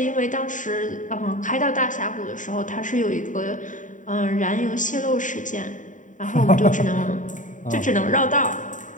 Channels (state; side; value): late; right; 0.37 ms